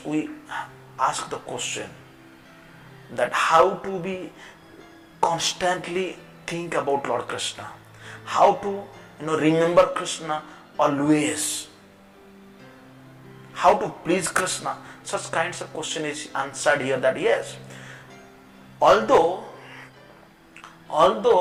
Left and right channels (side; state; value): both; identical; correlation 1.00